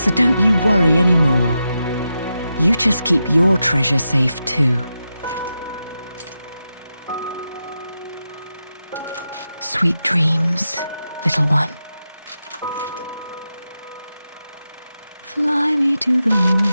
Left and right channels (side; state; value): both; inverted; correlation -0.89